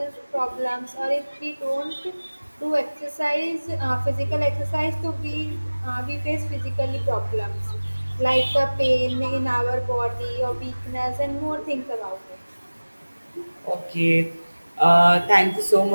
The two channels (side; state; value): both; inverted; correlation -1.00